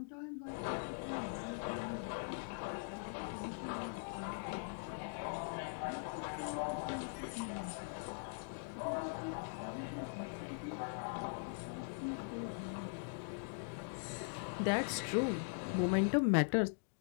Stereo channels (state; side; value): silent; right; digital silence